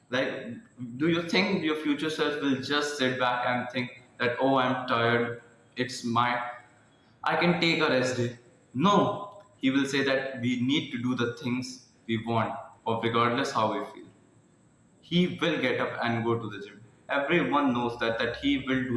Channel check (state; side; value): identical; both; correlation 1.00